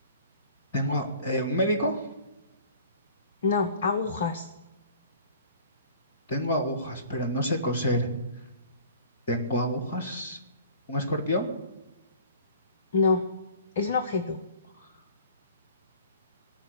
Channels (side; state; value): both; inverted; correlation -0.47